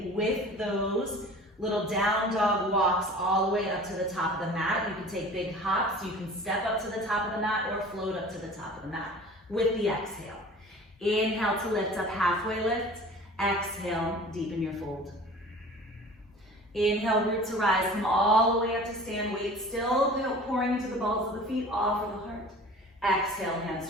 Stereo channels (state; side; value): normal; both; correlation 0.42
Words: with those little down dog walks all the way up to the top of the mat. You can take big hops. You can step up to the top of the mat or float up to the top of the mat with the exhale. Inhale to lift up, halfway lift. Exhale, deepen your fold. Inhale, root to rise. Come all the way up to stand. Weight still pouring into the balls of the feet, all for the heart. Exhale, hands